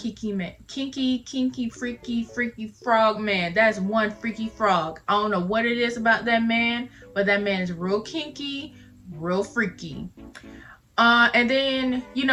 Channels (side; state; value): both; identical; correlation 1.00